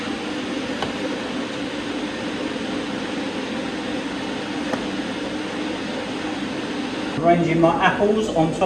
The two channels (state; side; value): identical; both; correlation 1.00